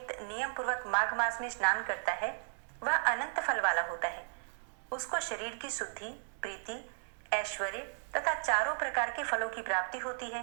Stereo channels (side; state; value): left; silent; 54 dB below the other